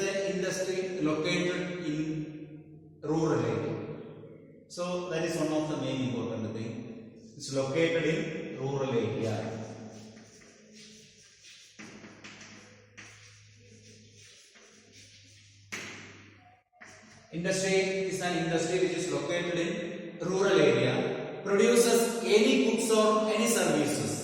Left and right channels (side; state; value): both; identical; correlation 1.00